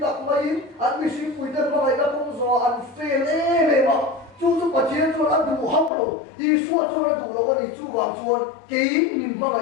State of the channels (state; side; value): drops out; right; at 5.9 s